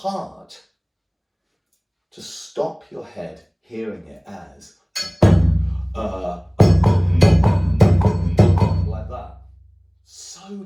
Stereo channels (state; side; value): identical; both; correlation 1.00